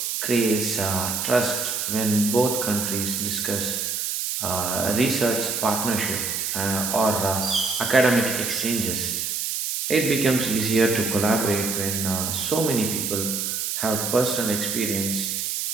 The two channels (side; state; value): right; noise; hiss, 1 dB below the sound